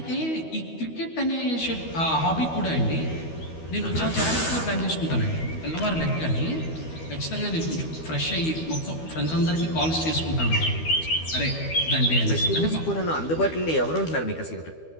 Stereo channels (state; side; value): late; right; 12 ms